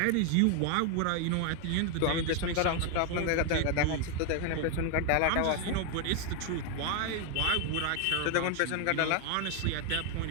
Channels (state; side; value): different; both; correlation 0.00